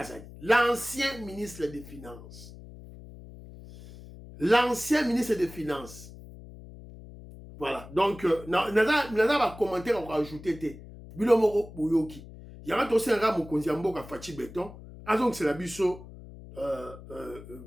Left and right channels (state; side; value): noise; left; hum, 16 dB below the sound